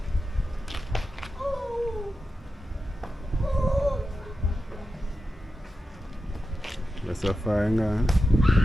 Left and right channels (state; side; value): normal; both; correlation 0.91